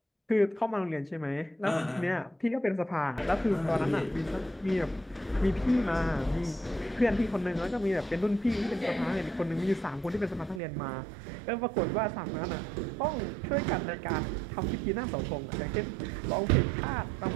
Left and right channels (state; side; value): drops out; left; at 10.6 s